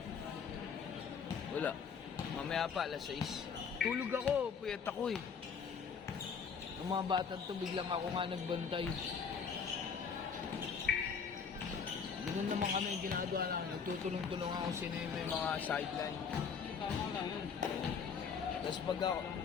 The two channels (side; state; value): right; quieter; 6.2 dB